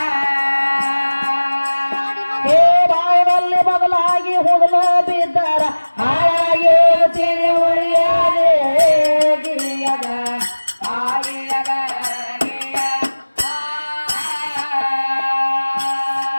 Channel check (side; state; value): both; inverted; correlation -1.00